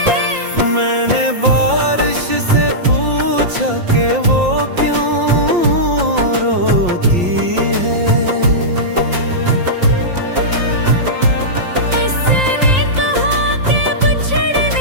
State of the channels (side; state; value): left; late; 5.7 ms